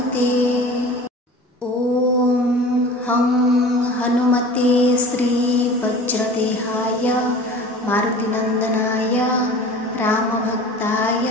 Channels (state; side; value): normal; both; correlation 0.40